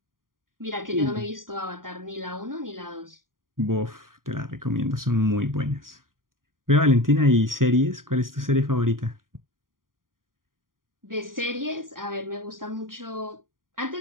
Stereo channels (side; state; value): left; late; 0.91 ms